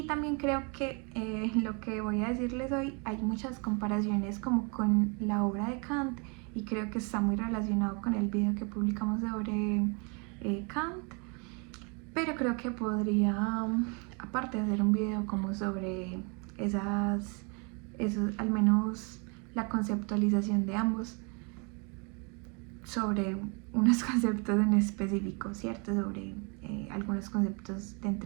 también creo que lo que voy a decirles hoy hay muchas comparaciones como con la obra de Kant, y creo que está muy relacionado con el video que publicamos sobre Kant. Pero creo que podría, aparte, hacer un video como sobre esos, al menos la conceptualización de ambos, sobre unos conceptos en específico, ¿cierto? Sobre algunos conceptos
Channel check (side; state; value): left; quieter; 33.9 dB